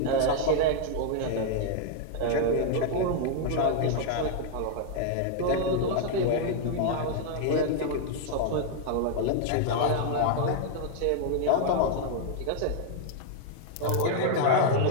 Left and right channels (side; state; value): both; different; correlation 0.00